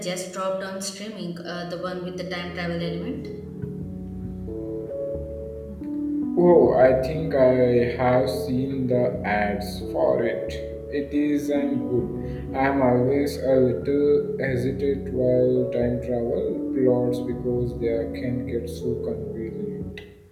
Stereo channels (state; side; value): identical; both; correlation 1.00